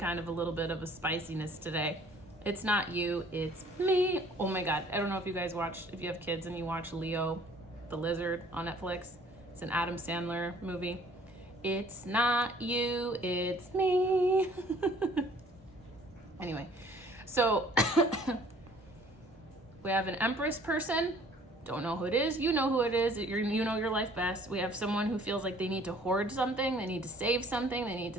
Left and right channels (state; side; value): normal; both; correlation 0.55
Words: of a little bit of a spiciness today. It's not you, it's me. Oh my God. I don't know if you guys if you have kids and you watch Leo the Lizard on Netflix. It's an Adam Sandler movie. It's not you, it's me. Anyway, so we have an Empress person. Don't know who it is. You know who it is. You know your life best. We have someone who feels like they need to hoard something. They need to save something. They need to